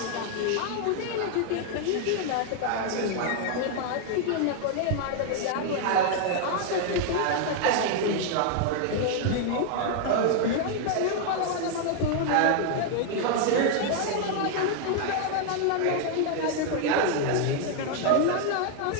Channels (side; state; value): both; different; correlation 0.00